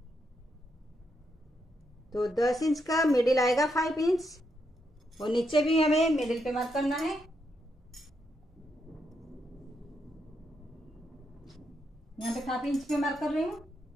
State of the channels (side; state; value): both; normal; correlation 0.81